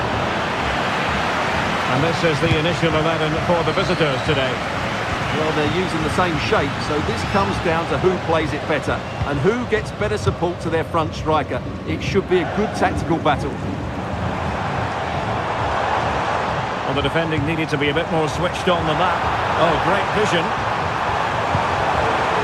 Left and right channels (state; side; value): identical; both; correlation 1.00